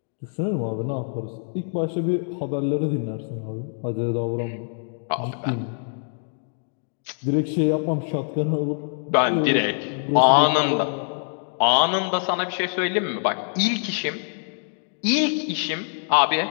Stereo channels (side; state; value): right; silent; 60 dB below the other